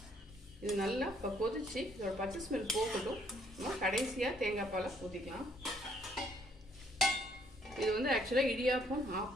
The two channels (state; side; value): normal; both; correlation 0.67